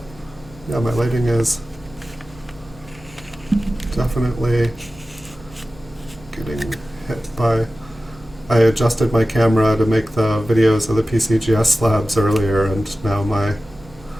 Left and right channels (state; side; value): noise; right; hum, 23 dB below the sound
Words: yeah, my lighting is definitely getting hit by, I adjusted my camera to make the videos of the PCGS slabs earlier, and now my